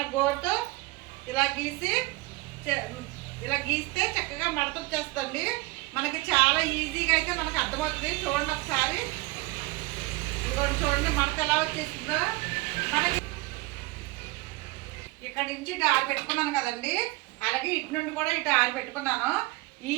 గోరుతో ఇలా గీస్తే చక్కగా మడత వచ్చేస్తుంది. మనకి చాలా ఈజీగా అయితే మనకు అర్థమవుతుంది. చూడండి ఒకసారి, ఇదిగోండి చూడండి మడత ఎలా వచ్చేస్తుందో. మనకి ఇక్కడ నుంచి ఇటు 6 పెట్టుకున్నాను కదండి, అలాగే ఇటు నుండి కూడా ఇటు 6 పెట్టుకున్నాను.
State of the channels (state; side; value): quieter; left; 22.7 dB